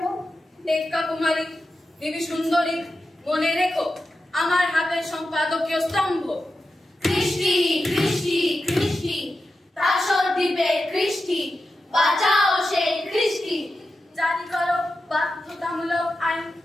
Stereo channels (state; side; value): normal; both; correlation 0.91